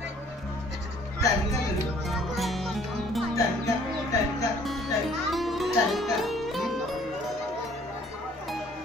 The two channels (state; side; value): normal; both; correlation 0.58